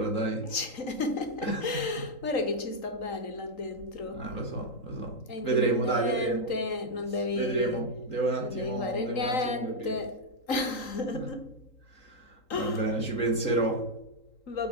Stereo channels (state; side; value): late; right; 3.8 ms